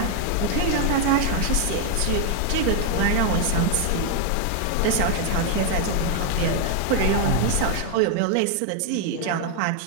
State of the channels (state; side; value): different; both; correlation 0.01